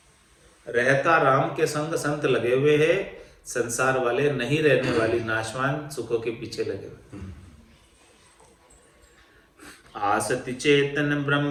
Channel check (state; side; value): identical; both; correlation 1.00